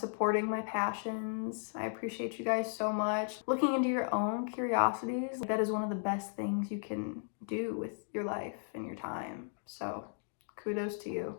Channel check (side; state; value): right; silent; digital silence